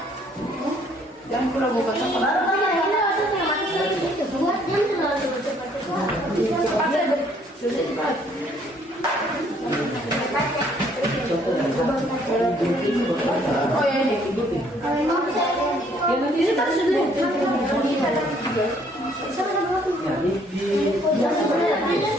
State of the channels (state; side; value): normal; both; correlation 0.63